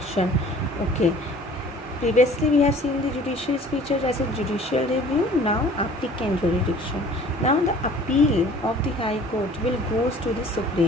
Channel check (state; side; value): normal; both; correlation 0.50